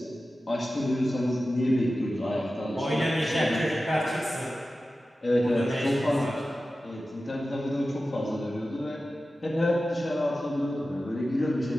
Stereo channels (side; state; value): both; normal; correlation 0.94